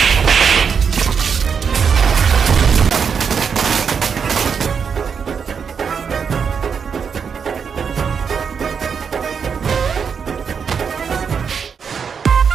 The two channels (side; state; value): left; quieter; 6.5 dB